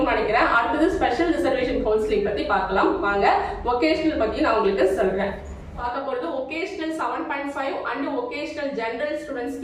நினைக்கிறேன். அடுத்தது ஸ்பெஷல் ரிசர்வேஷன் கவுன்சிலிங் பத்தி பார்க்கலாம் வாங்க. வொகேஷனல் பத்தி நான் உங்களுக்கு சொல்றேன். பார்க்க போறது ஒகேஷனல் 7.5 அண்ட் ஒகேஷனல் ஜெனரல்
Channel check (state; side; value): identical; both; correlation 1.00